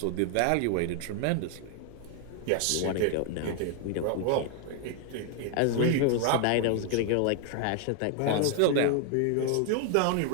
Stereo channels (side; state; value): both; different; correlation 0.00